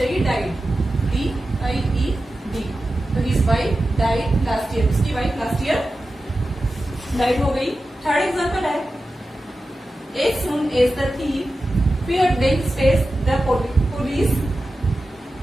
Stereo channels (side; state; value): both; normal; correlation 0.93